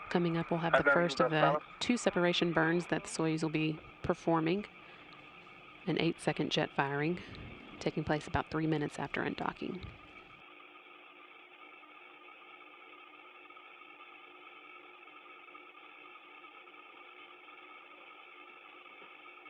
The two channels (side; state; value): both; identical; correlation 1.00